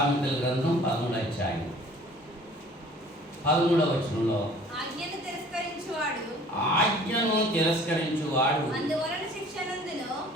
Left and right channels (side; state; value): both; normal; correlation 0.50